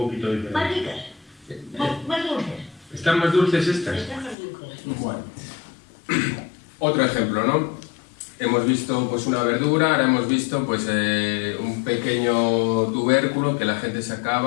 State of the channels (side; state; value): right; drops out; at 4.4 s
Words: Más diferente. ricas. Más dulces. ¿Están más dulces estas? Están más dulces. Bueno. Otro ejemplo, ¿no? Hemos visto pues una verdura, ahora hemos visto pues un pequeño tubérculo que la gente